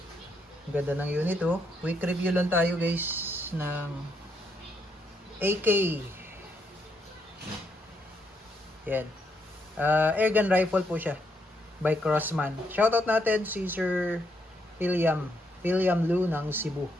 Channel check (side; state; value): both; normal; correlation 0.76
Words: Ang ganda ng unit oh. Quick review lang tayo guys ng AK. Yan. Airgun rifle po siya by Crossman. Shoutout natin si Sir William Lu ng Cebu.